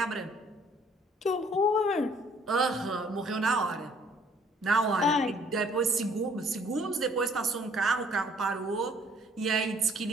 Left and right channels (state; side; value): normal; both; correlation 0.60